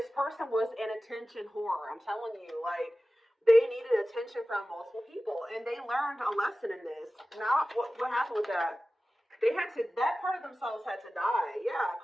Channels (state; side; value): normal; both; correlation 0.96